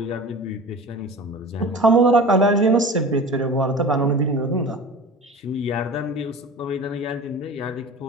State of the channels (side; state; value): both; normal; correlation 0.37